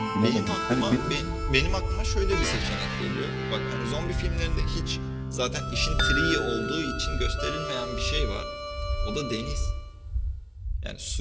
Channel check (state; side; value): identical; both; correlation 1.00